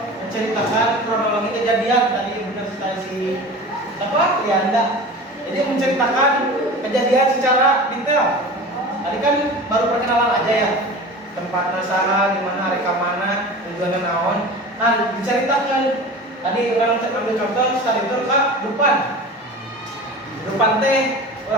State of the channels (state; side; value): normal; both; correlation 0.35